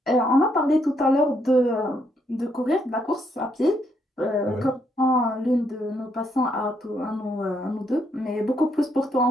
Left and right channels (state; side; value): normal; both; correlation 0.74